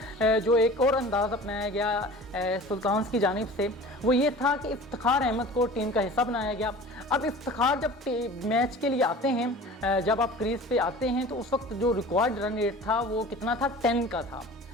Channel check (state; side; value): normal; both; correlation 0.41